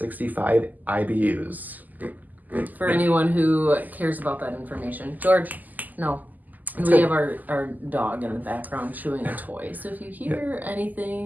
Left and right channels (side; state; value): left; late; 0.083 ms